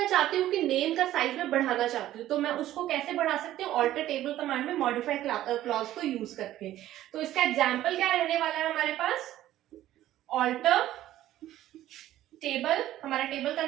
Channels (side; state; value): left; quieter; 13.7 dB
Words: चाहती हूँ कि नेम का साइज में बढ़ाना चाहती हूँ, तो मैं उसको कैसे बढ़ा सकती हूँ, ऑल्टर टेबल कमांड में मॉडिफाई क्लॉज को यूज करके. तो इसका एग्जाम्पल क्या रहने वाला है हमारे पास, ऑल्टर टेबल, हमारा टेबल का